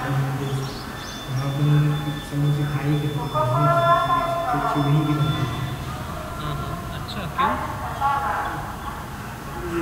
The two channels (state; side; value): identical; both; correlation 1.00